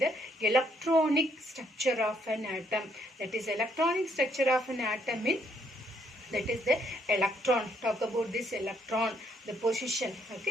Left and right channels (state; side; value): normal; both; correlation 0.71